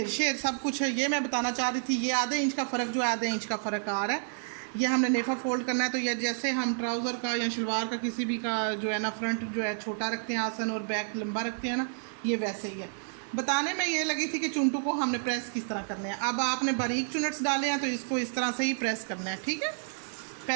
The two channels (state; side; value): silent; left; digital silence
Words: शेर सब कुछ है। ये मैं बताना चाह रही थी, ये आधे इंच का फ़र्क जो है आधे इंच का फ़र्क आ रहा है। ये हमने नेफ़ा फोल्ड करना है तो ये जैसे हम ट्राउज़र का या शलवार का किसी भी का जो है ना फ्रंट जो है छोटा रखते हैं आसन और बैक लंबा रखते हैं ना, ये वैसे ही है। बताने में ये लगी थी कि चुनटू को हमने प्रेस किस तरह करने हैं। अब आपने बारीक चुनट्स डाले हैं तो इसको इस तरह से ही प्रेस करना है, ठीक है।